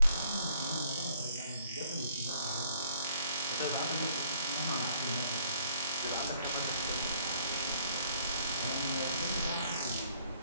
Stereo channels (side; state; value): both; inverted; correlation -0.64